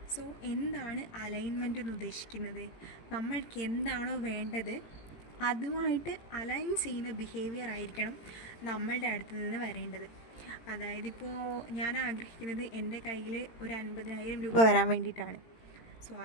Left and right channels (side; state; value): right; late; 18 ms